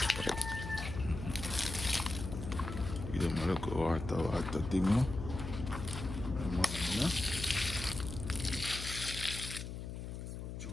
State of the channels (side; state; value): left; noise; hum, 7 dB below the sound